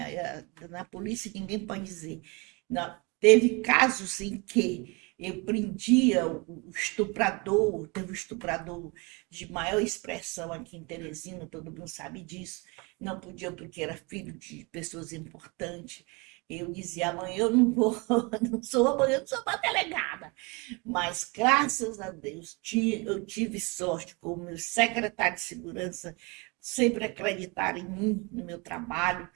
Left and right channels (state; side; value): quieter; left; 28.5 dB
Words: Na polícia ninguém pode dizer. Não, teve casos em que eu prendia o estuprador, teve um estuprador de maior expressão aqui em Teresina, todo mundo sabe disso. Não podia porque era filho de pessoas importantes. Eu dizia, amanhã eu não vou, amanhã eu não sou uma delegada. Mas, graças a Deus, eu tive sorte com o meu secretário de segurança, sempre acreditaram em mim, no meu trabalho.